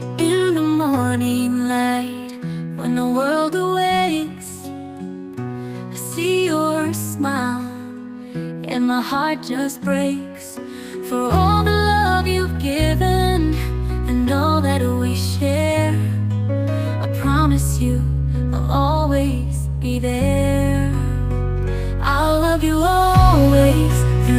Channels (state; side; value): identical; both; correlation 1.00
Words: the morning light, when the world awakes, I see your smile and my heart just breaks for all the love you've given and all that we share. I promise you I'll always be there. I'll love you always,